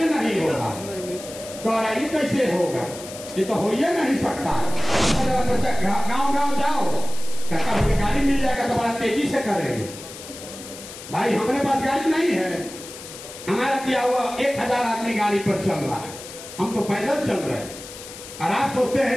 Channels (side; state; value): left; noise; hiss, 14 dB below the sound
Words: नहीं होगा, तो कैसे होगा, ये तो हो ही नहीं सकता। गांव गांव जाओ, कभी गाड़ी मिल जाएगा तो बड़ा तेजी से करेंगे। भाई हमारे पास गाड़ी नहीं है, हमारा दिया हुआ 1000 आदमी गाड़ी पर चल रहा है, हम तो पैदल चल रहे हैं। और आप सोचते